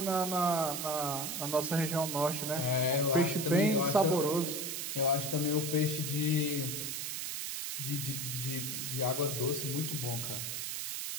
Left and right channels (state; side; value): noise; right; hiss, 3 dB below the sound